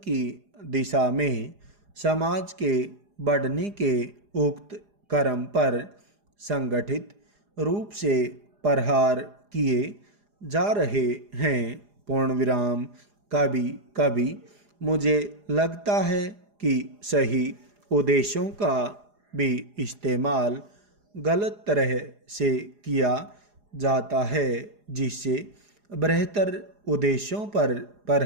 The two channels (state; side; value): late; left; 4.9 ms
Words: की दिशा में समाज के बढ़ने के उक्त क्रम पर संगठित रूप से प्रहार किए जा रहे हैं। पूर्ण विराम। कभी कभी मुझे लगता है कि सही उद्देश्यों का भी इस्तेमाल गलत तरह से किया जाता है, जिससे बेहतर उद्देश्यों पर